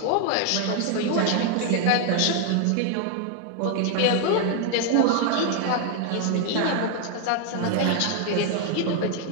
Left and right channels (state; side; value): different; both; correlation 0.00